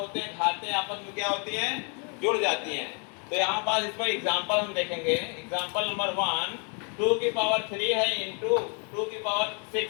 हैं, घातें आपस में क्या होती हैं? जुड़ जाती हैं। तो यहाँ पास इस पर एग्जाम्पल हम देखेंगे। एग्जाम्पल नंबर 1, 2 की पावर 3 है इंटू 2 की पावर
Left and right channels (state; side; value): quieter; right; 38.3 dB